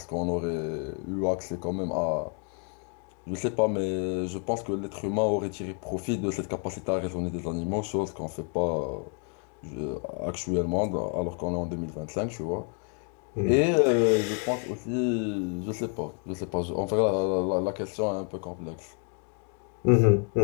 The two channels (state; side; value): quieter; right; 38.9 dB